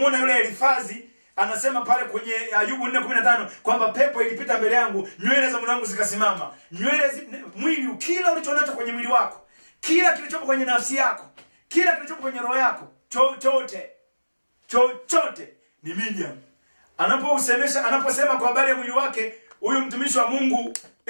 yule Elifazi anasema pale kwenye Ayubu 4:15 kwamba pepo ilipita mbele yangu, nywele za mwanangu zikasimama. Mwili, kila ulichonacho kwenye mwili wako, kila kilichopo kwenye nafsi yako, kila kilichopo kwenye roho yako, chochote ni medium. Anaposema kwa habari ya mwili wake huyu mtumishi wa Mungu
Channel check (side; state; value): both; inverted; correlation -1.00